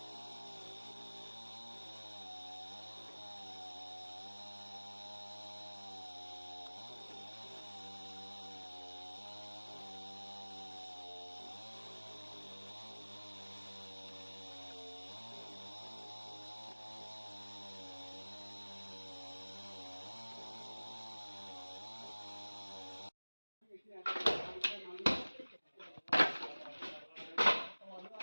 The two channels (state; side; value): inverted; both; correlation -1.00